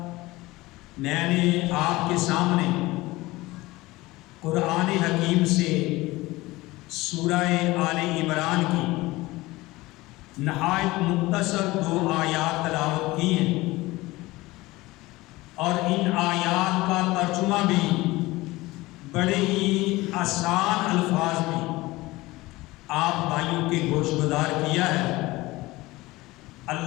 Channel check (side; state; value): right; quieter; 19.9 dB